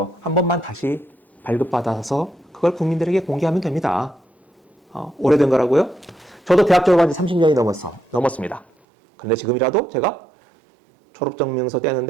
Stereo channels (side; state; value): left; drops out; at 8.7 s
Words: 한 번만 다시 발급받아서 그걸 국민들에게 공개하면 됩니다. 오래된 거라고요? 저도 대학 졸업한 지 30년이 넘었습니다. 그런데 지금이라도 제가 졸업증명서